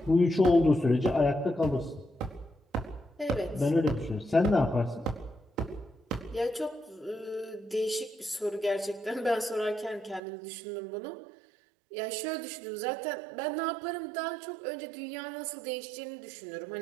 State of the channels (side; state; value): left; drops out; at 10.2 s